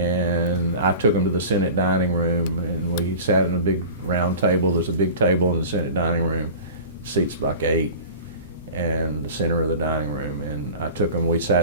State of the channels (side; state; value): both; inverted; correlation -0.37